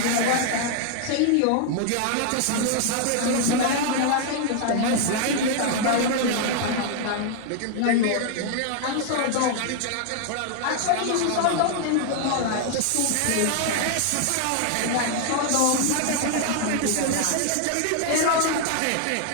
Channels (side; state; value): both; different; correlation 0.00